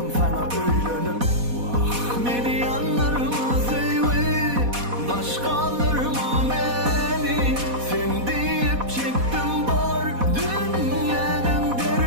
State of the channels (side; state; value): left; late; 4.1 ms